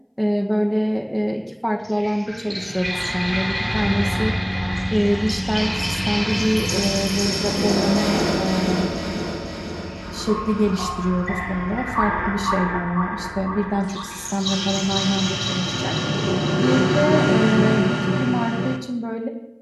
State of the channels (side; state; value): both; identical; correlation 1.00